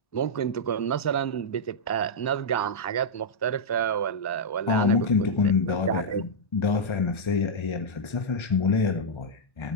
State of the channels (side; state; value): right; late; 1.3 ms